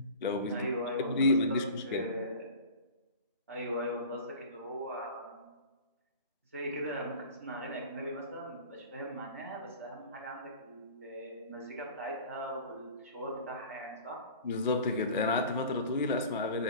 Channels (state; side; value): inverted; both; correlation -0.40